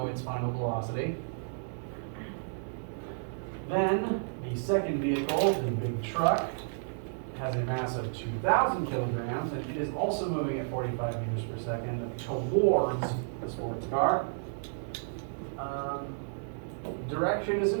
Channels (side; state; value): left; silent; 56 dB below the other